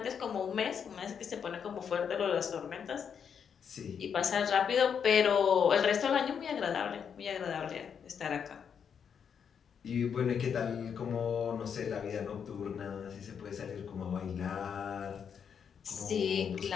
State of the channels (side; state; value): right; quieter; 7.3 dB